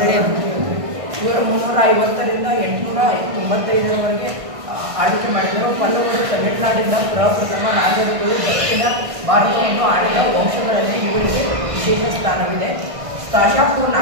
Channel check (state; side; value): late; left; 1.6 ms